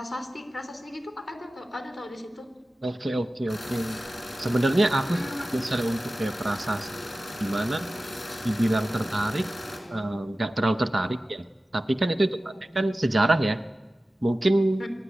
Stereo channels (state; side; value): normal; both; correlation 0.96